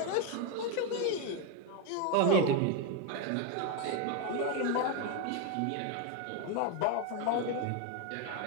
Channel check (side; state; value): both; different; correlation 0.02